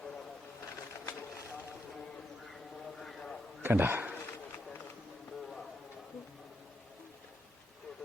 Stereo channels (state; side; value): normal; both; correlation 0.82